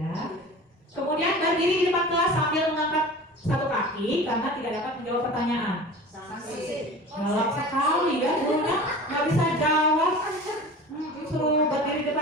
Kemudian berdiri di depan kelas sambil mengangkat satu kaki karena tidak dapat menjawab pertanyaan. Sanksi. Galak sekali ya, gurunya nggak bisa jawab. Suruh berdiri di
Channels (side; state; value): both; normal; correlation 0.37